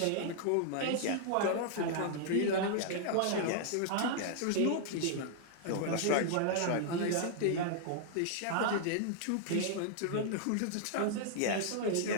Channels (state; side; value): different; both; correlation -0.01